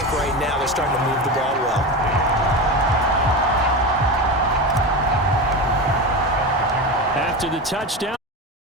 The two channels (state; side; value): normal; both; correlation 0.22